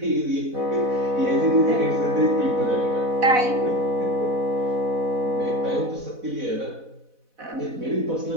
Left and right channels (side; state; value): left; late; 4.0 ms